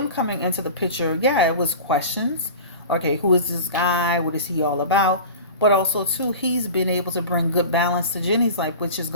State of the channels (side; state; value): both; inverted; correlation -0.35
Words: coming into the picture, yeah, it was questions. Okay, who is this guy? What is he all about? But also too, he's been able to bring good balance to Jenny's life, which